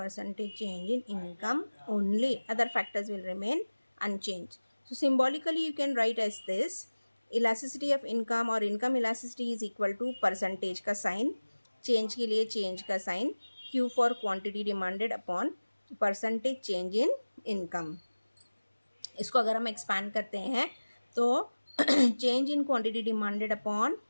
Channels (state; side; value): inverted; both; correlation -1.00